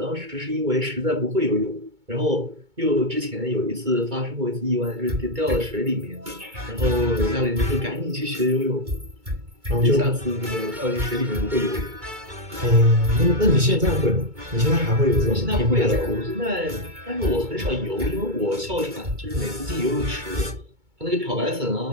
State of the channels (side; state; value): left; late; 2.2 ms